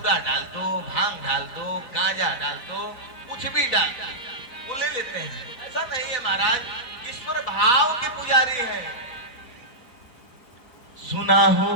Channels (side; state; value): right; late; 4.0 ms